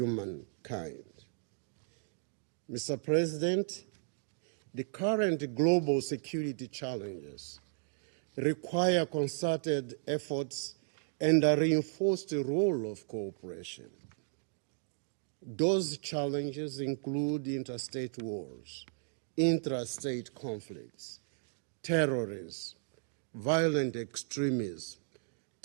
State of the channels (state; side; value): silent; left; digital silence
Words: Mr. President, the current global security challenges require concerted efforts and a reinforced role of cooperation. Those challenges include interstate wars, intrastate conflicts, terrorism, violent extremism,